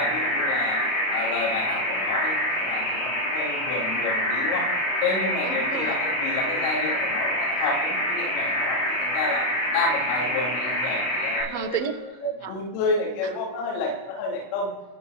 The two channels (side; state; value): right; late; 32 ms